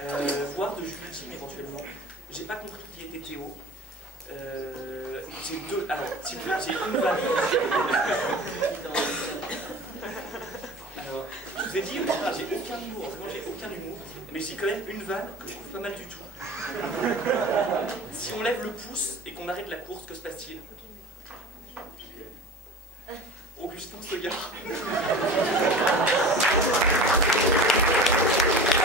Voire de Jules Ultime éventuellement. J'ai pas compris qui était Théo. J'ai deux. Alors, j'ai une vanne. Alors, je vous ai dit, j'ai aucun humour, vraiment j'ai aucun humour, mais j'ai quand même une vanne que je trouve pas mal du tout. Si on lève le pouce et qu'on arrête la course, que se passe-t-il? Augustin se gare.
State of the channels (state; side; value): normal; both; correlation 0.37